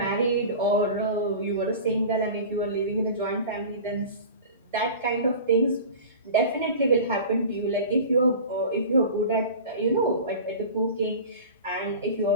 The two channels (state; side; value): inverted; both; correlation -0.36